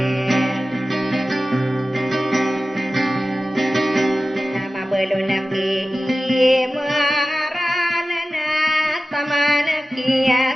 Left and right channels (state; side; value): normal; both; correlation 0.95